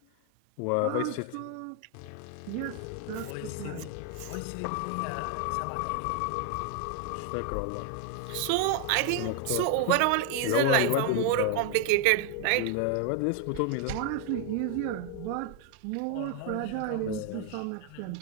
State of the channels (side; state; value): both; different; correlation 0.00